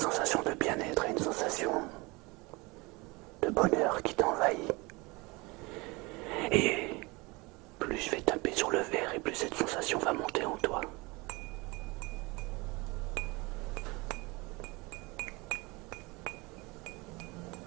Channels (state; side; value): quieter; left; 25.2 dB